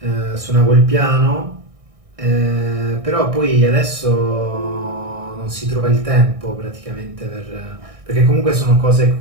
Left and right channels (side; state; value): left; late; 1.6 ms